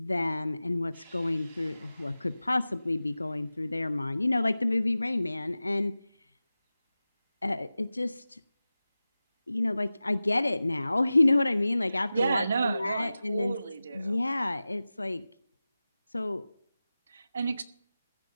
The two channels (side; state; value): both; inverted; correlation -0.96